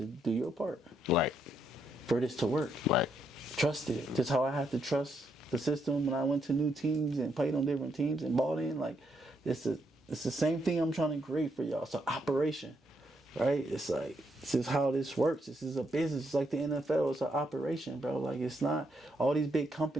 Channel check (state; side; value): normal; both; correlation 0.77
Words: do your part. Right. For this to work. Right. Trust it. That's how I have to trust the system when I went to new teams and played on different teams and bought in. Like, it's the same thing I'm trying to create for y'all. It's an operation, right? It's like, this is how this works. This is a business. It's like the NFL. It's an operation, bro. Like, it's not, all these big